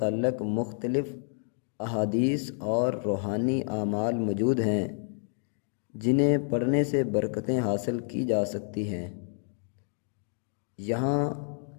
مختلف احادیث اور روحانی اعمال موجود ہیں جنہیں پڑھنے سے برکتیں حاصل کی جا سکتی ہیں۔ یہاں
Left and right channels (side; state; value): right; silent; 58 dB below the other